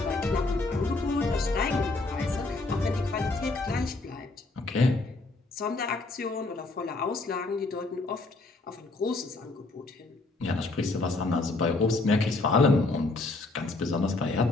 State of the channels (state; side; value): quieter; right; 3.2 dB